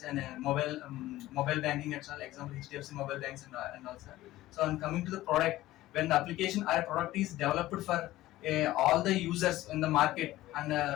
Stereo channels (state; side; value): quieter; right; 16.1 dB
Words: and mobile banking and all. Example, HDFC mobile banks and also. So on coming to the product, when the application or a product is developed for all the users in the market